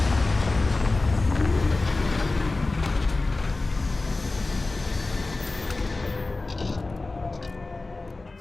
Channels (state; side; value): quieter; right; 3.3 dB